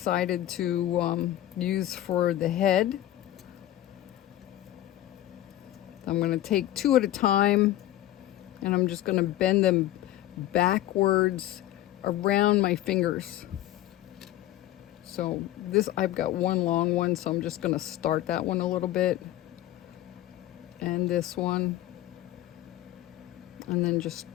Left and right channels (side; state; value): right; quieter; 14.1 dB